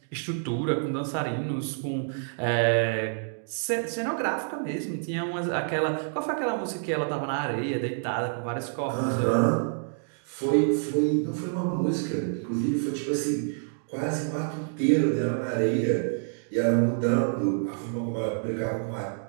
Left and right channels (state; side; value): silent; left; digital silence